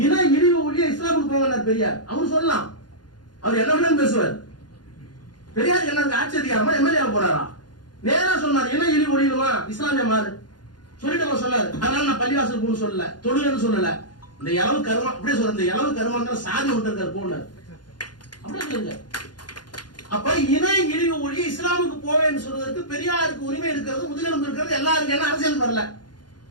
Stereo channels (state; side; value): late; right; 0.70 ms